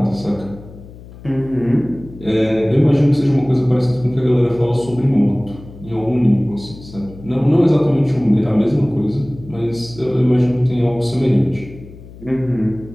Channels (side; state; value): left; noise; hum, 18 dB below the sound